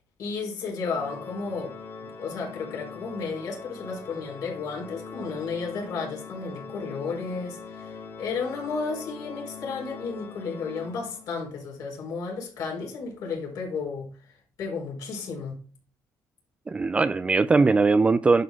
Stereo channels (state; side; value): normal; both; correlation 0.79